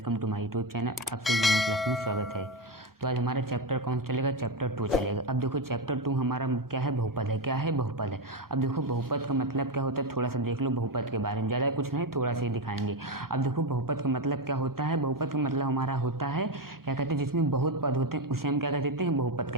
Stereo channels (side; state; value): both; normal; correlation 0.11